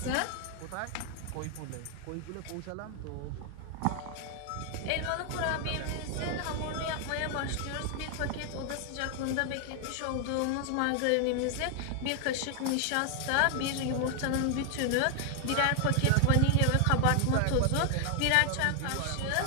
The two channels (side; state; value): both; different; correlation 0.00